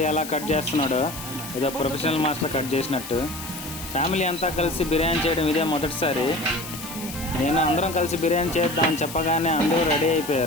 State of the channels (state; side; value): noise; left; hiss, 11 dB below the sound